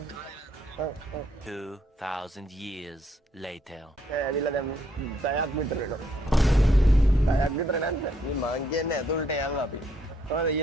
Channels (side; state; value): both; normal; correlation 0.70